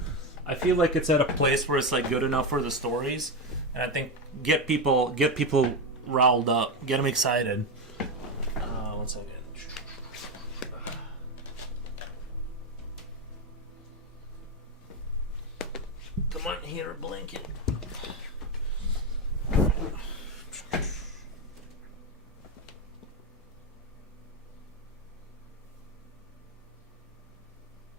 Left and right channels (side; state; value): both; normal; correlation 0.12